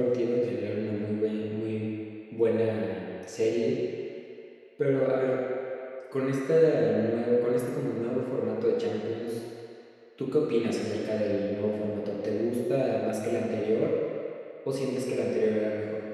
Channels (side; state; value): both; identical; correlation 1.00